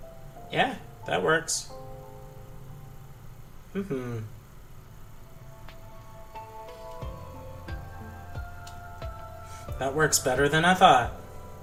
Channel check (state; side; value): identical; both; correlation 1.00